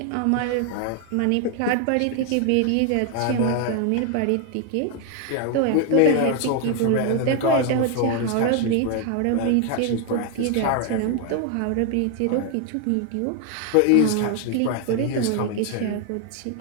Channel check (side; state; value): both; different; correlation 0.01